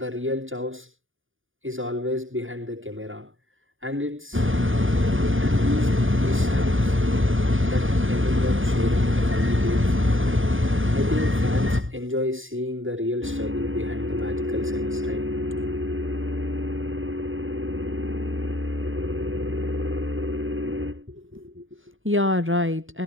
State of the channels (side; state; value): left; late; 0.58 ms